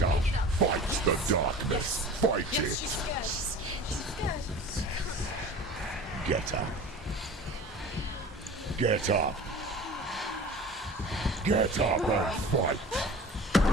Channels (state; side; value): normal; both; correlation 0.39